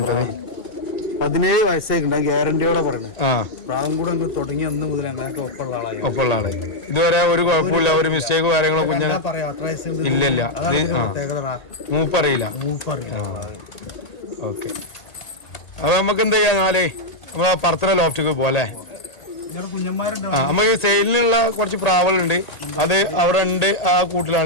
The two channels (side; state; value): right; late; 1.8 ms